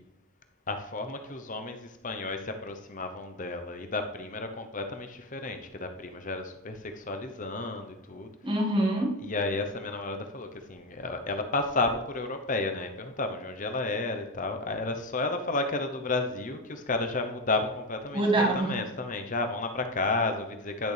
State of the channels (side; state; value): both; normal; correlation 0.14